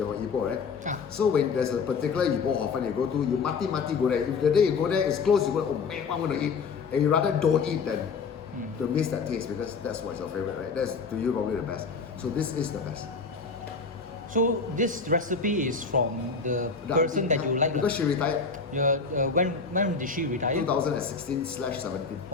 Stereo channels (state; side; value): quieter; right; 5.0 dB